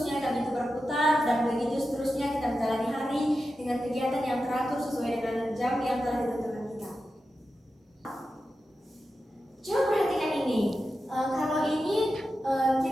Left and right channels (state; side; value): normal; both; correlation 0.91